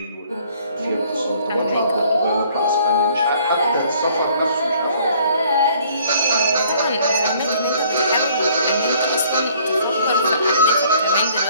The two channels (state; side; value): inverted; both; correlation -0.59